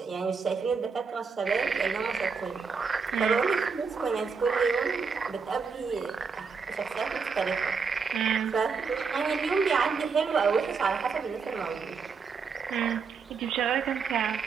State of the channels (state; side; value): quieter; left; 5.4 dB